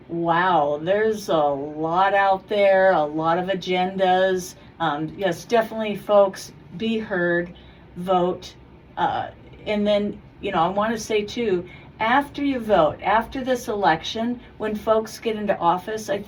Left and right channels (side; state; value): both; identical; correlation 1.00